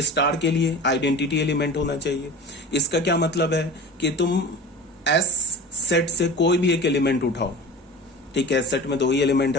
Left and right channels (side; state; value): both; normal; correlation 0.36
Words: के लिए आइडेंटिटी एलिमेंट होना चाहिए। इसका क्या मतलब है कि तुम एस सेट से कोई भी एक एलिमेंट उठाओ, ठीक है, सेट में दो ही एलिमेंट